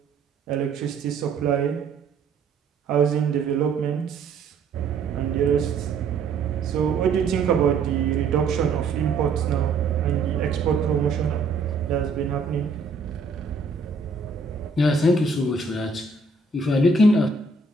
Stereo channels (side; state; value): left; quieter; 4.1 dB